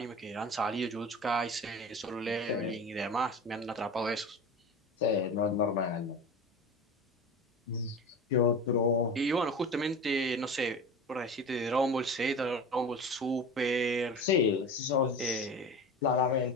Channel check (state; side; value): normal; both; correlation 0.31